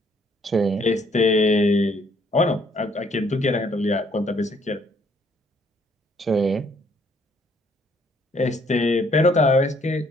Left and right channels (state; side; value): normal; both; correlation 0.65